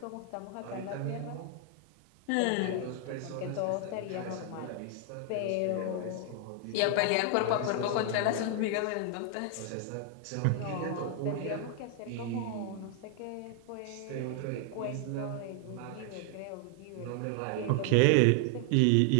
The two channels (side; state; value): both; different; correlation 0.00